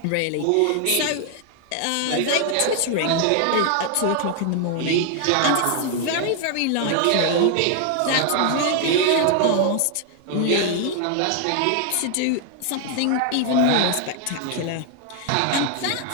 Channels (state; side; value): different; both; correlation 0.00